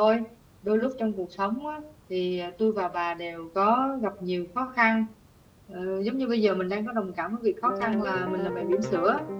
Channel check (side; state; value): both; identical; correlation 1.00